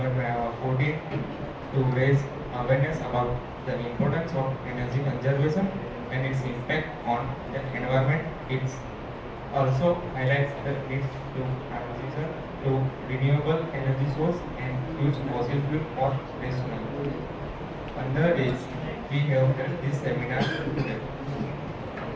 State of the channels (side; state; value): both; identical; correlation 1.00